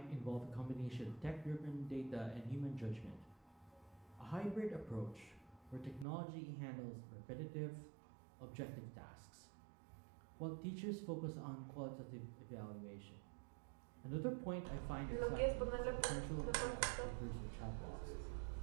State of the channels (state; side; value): drops out; left; at 6.1 s